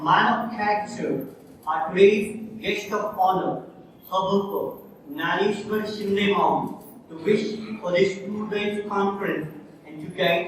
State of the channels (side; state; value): both; identical; correlation 1.00